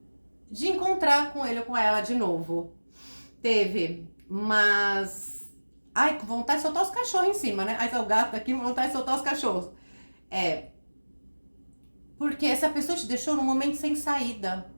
de encontrar com ele ou com ela de novo. Teve, mas... Ai, com vontade de soltar os cachorros em cima, né? Aí tá o gato aqui, com vontade de soltar os cachorros. Porque essa pessoa te deixou num momento sem saída.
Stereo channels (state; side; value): inverted; both; correlation -1.00